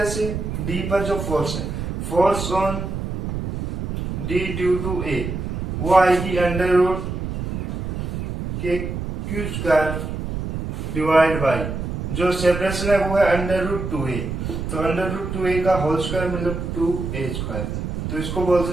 से डी पर जो फोर्स है, force on D due to A वो आएगी √KQ² डिवाइड बाई जो सेपरेशन है वो है √2a, तो √2a का होल स्क्वायर मतलब 2a², तो इसको बोल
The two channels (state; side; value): noise; right; rumble, 4 dB below the sound